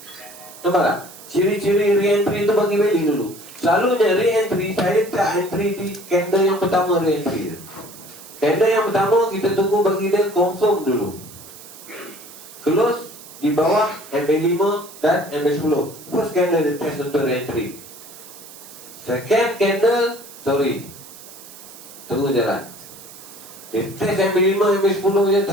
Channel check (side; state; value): right; noise; hiss, 18 dB below the sound